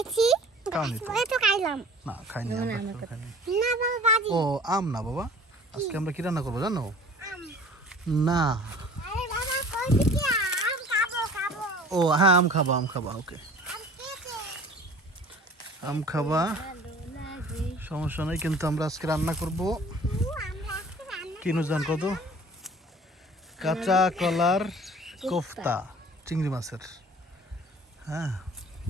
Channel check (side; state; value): both; normal; correlation 0.47